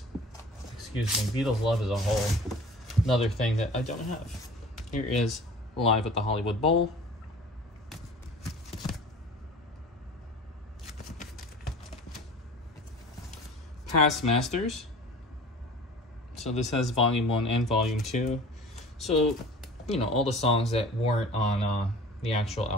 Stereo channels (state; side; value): normal; both; correlation 0.42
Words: Excuse me, Beatles Love is a whole another thing that I don't have. Here is Live at the Hollywood Bowl. Past Masters. So this has Volume 1 and Volume 2. So, you know, all the songs that weren't on the actual